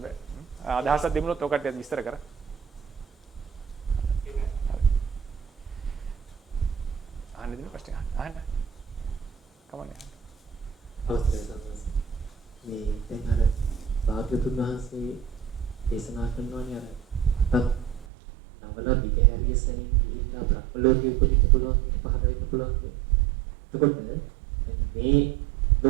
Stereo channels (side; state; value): left; drops out; at 18.1 s